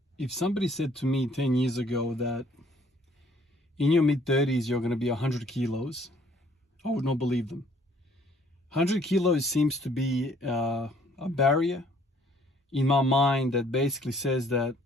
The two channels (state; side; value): normal; both; correlation 0.61